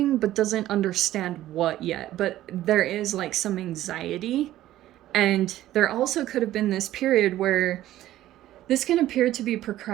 but doesn't understand what yet. But there is like some anxiety. And there also could have been this period where this can appear to be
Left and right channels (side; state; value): left; quieter; 14.0 dB